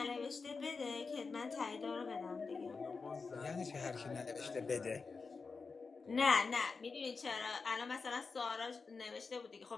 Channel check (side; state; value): right; quieter; 4.6 dB